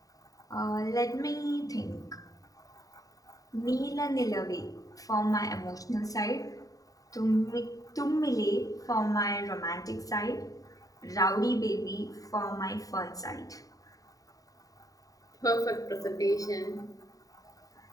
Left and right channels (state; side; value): late; right; 0.17 ms